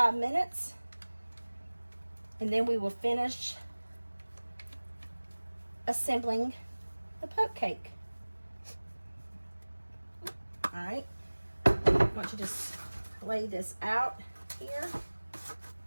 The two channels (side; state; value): both; inverted; correlation -1.00